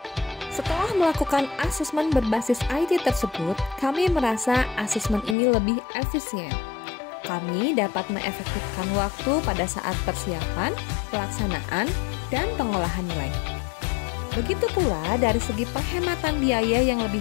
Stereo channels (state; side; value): drops out; right; at 5.4 s